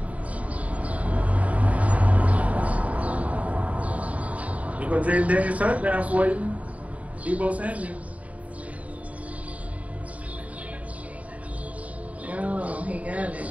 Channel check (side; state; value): left; late; 0.068 ms